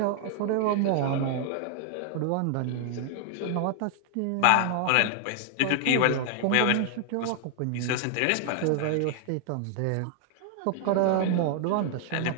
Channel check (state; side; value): different; both; correlation 0.00